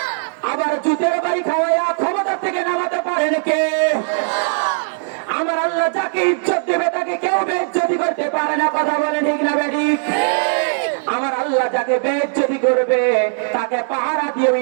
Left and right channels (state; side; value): silent; left; digital silence